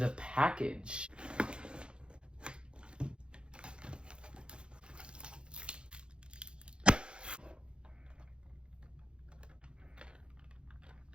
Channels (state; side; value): late; left; 0.054 ms